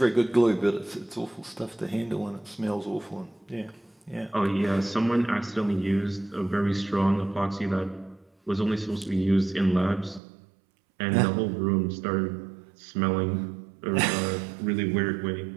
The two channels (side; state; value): left; drops out; at 10.2 s